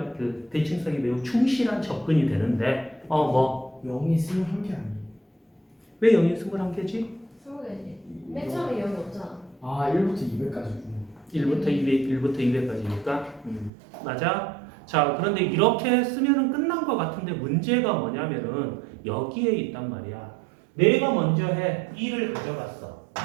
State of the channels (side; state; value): left; drops out; at 13.7 s